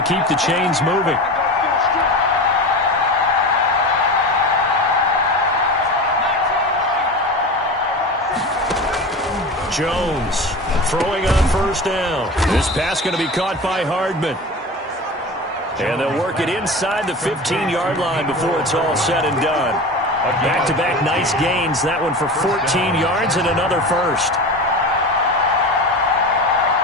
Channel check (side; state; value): both; normal; correlation 0.30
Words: the chains moving. Jones throwing on 1st down. This pass going to be caught by Hardman. And they'll work it inside the 15-yard line before it's all said and done. Back-to-back nice gains. That one for 14 yards and another 1st.